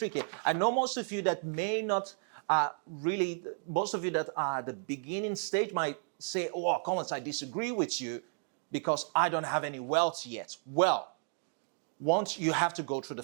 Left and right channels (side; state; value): left; silent; 56 dB below the other